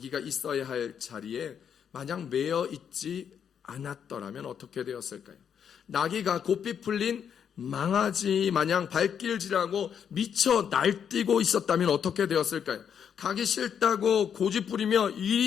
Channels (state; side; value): quieter; right; 8.0 dB